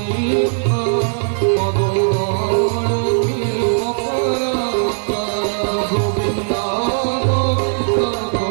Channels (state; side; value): silent; left; 56 dB below the other